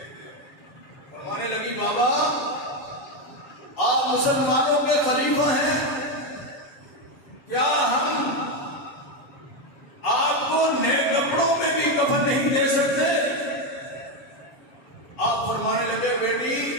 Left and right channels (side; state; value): right; late; 7.7 ms